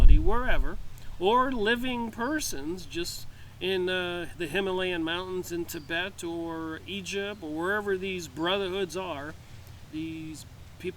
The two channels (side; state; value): both; identical; correlation 1.00